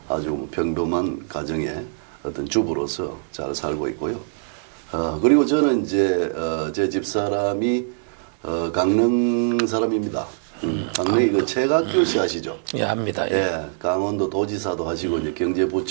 아주 평범한 가정의 어떤 주부로서 잘 살고 있고요. 그리고 저는 이제 제 집사람이 강릉 사람입니다. 강릉이 그 최각규 씨 아시죠? 예, 압니다. 예. 예, 강원도 도지사도 하시고 이제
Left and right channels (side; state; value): left; silent; 63 dB below the other